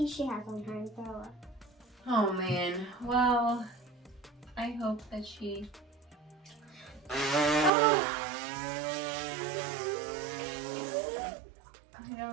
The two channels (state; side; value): drops out; left; at 7.7 s